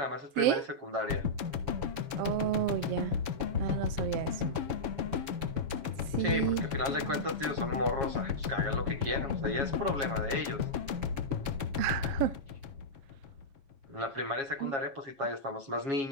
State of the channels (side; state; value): left; late; 6.9 ms